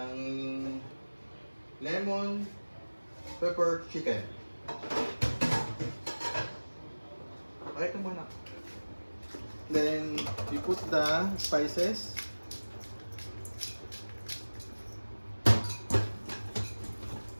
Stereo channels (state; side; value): inverted; both; correlation -1.00